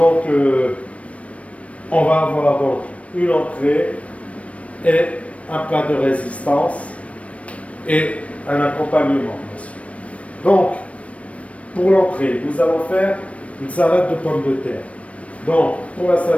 on va avoir donc une entrée et un plat de résistance et un accompagnement, bien sûr. Donc, pour l'entrée, nous allons faire une salade de pommes de terre. Donc, pour la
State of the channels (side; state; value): right; late; 0.064 ms